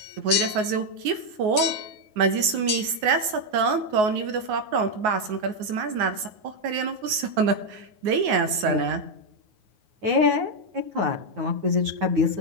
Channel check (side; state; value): left; late; 9.5 ms